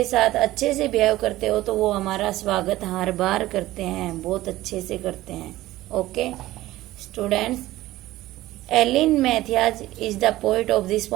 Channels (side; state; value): left; quieter; 16.4 dB